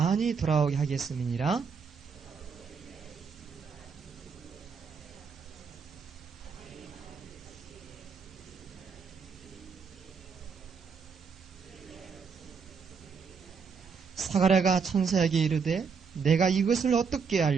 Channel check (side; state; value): left; quieter; 5.7 dB